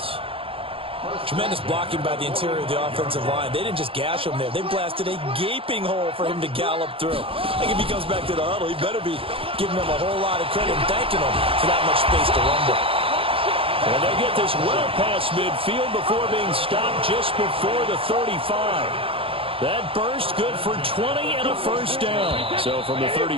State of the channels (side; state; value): left; late; 0.27 ms